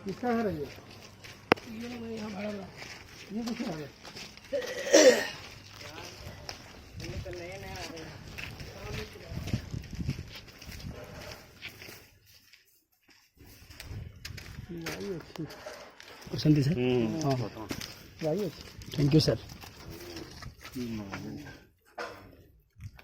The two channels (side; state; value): both; identical; correlation 1.00